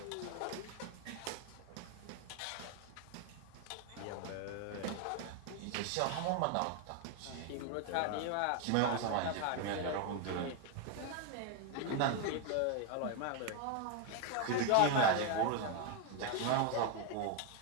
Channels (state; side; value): different; both; correlation 0.01